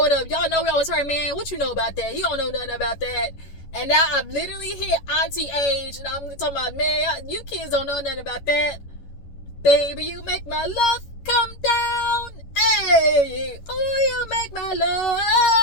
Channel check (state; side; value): late; right; 11 ms